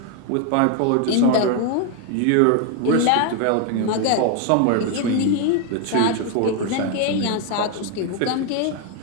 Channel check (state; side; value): different; both; correlation 0.01